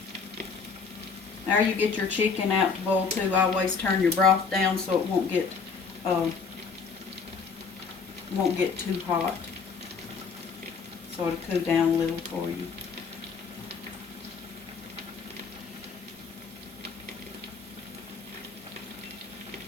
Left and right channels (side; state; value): right; quieter; 5.3 dB